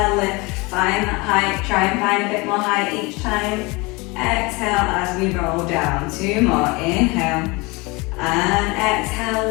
lift. Find that height. Try and find a bit more height each time. Exhale as we roll down. 2 more. Inhale. And exhale,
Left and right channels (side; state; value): right; quieter; 25.5 dB